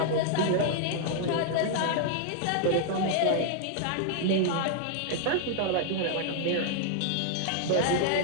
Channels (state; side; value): different; both; correlation 0.00